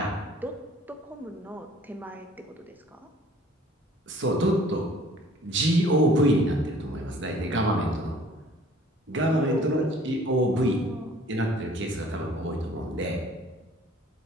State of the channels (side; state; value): both; normal; correlation 0.53